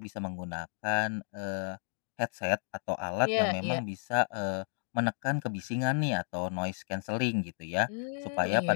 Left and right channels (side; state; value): right; silent; digital silence